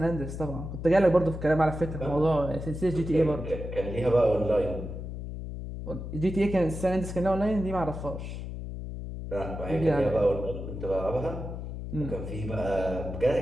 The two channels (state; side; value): noise; left; hum, 7 dB below the sound